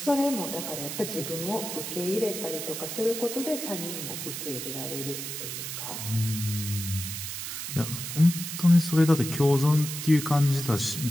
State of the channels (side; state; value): right; noise; hiss, 6 dB below the sound